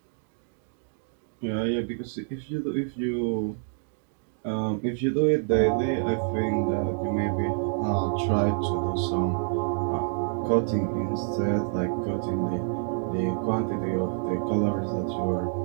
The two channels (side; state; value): left; silent; digital silence